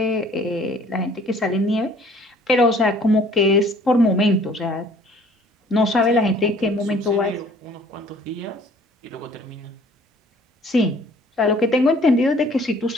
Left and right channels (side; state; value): both; normal; correlation 0.55